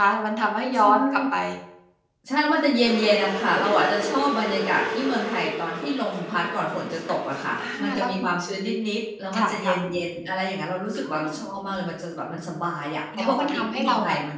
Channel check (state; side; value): identical; both; correlation 1.00